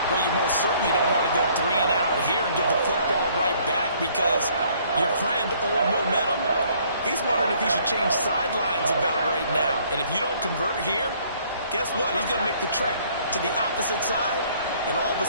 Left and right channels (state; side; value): inverted; both; correlation -0.61